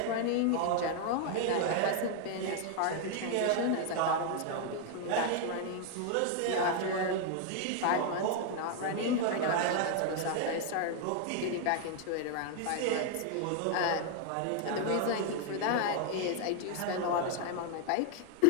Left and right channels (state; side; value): different; both; correlation 0.00